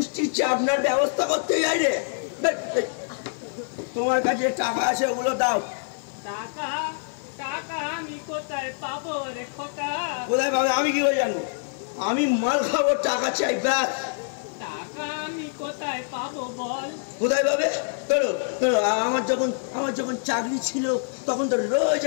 চাপনার ব্যবস্থা করতে যাই রে। তোমার কাছে টাকা আছে, ওগুলো দাও। টাকা? টাকা আমি কোথায় পাবো রে খোকা? কোথায় পাবে আমি কি করে জানবো? আমি মাল খাবো, টাকা চাই ব্যাস। টাকা আমি কোথায় পাবো বল? কোথায় পাবে? আমার যখন চাকরি ছিল তখন তো রোজ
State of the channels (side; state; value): right; silent; digital silence